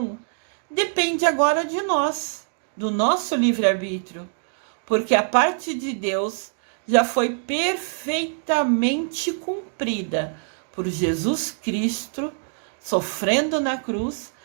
depende agora de nós, do nosso livre-arbítrio, porque a parte de Deus já foi perfeitamente cumprida por Jesus Cristo, sofrendo na cruz,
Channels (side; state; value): left; silent; digital silence